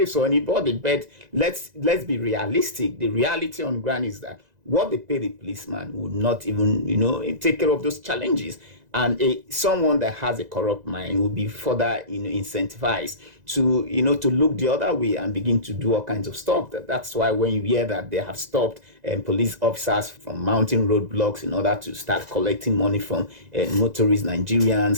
or anybody, but let's be realistic. The reality on ground is that what they pay the policeman would not even take care of those challenges. And someone that has a corrupt mind will be further incentivized to look the other way and begin to do all kinds of stuff. That's why when you hear that they have stopped police officers from mounting roadblocks in order to start collecting money from motorist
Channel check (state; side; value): late; left; 2.0 ms